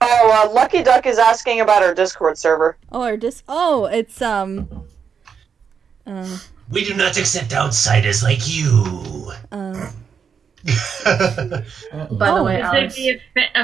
Oh, Lucky Duck is asking about our Discord server. Oh, it's We do not accept outsiders like you. By the way, Would Alex. there be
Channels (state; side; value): quieter; left; 6.7 dB